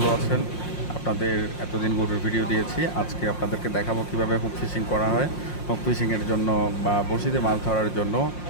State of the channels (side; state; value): right; late; 5.6 ms